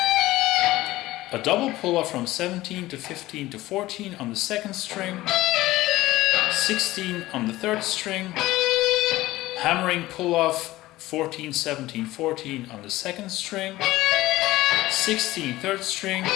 a double pull-off from 17 to 15 to 14 on the 2nd string, 16 on the 3rd string, hammering pull-off 14, 17, 14 on the 2nd string, 16, 3rd string,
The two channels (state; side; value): quieter; right; 17.3 dB